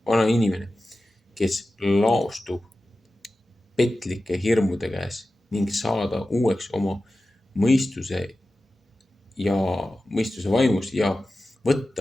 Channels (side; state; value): both; normal; correlation 0.94